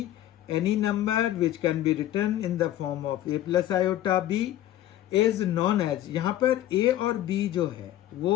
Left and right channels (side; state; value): right; quieter; 13.1 dB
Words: any number which can be written in the form of a+ iota b is non age, यहाँ पर a और b जो है